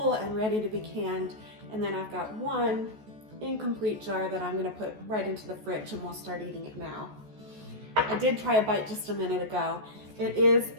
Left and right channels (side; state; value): left; late; 14 ms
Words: and ready to be canned, and then I've got 1 incomplete jar that I'm going to put right into the fridge, and we'll start eating it now. I did try a bite just a minute ago. It is